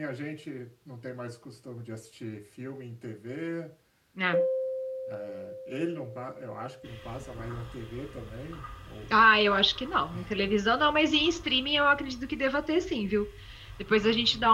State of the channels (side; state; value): both; identical; correlation 1.00